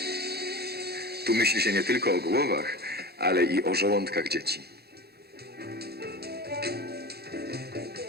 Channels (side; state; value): left; late; 0.46 ms